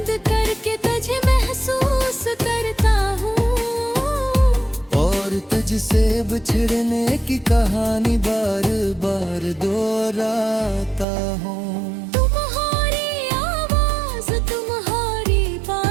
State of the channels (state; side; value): drops out; left; at 11.1 s